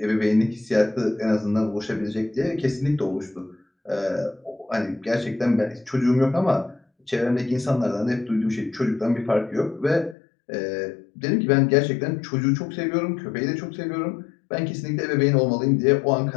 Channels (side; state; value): right; drops out; at 10.2 s